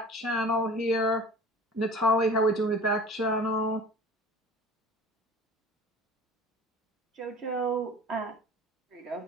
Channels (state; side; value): normal; both; correlation 0.41